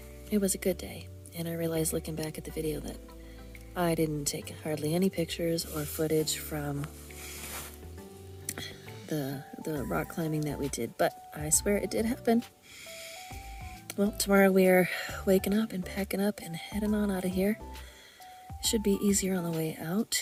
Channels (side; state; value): both; identical; correlation 1.00